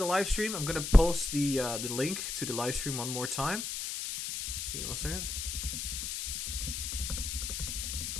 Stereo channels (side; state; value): left; noise; hiss, 4 dB below the sound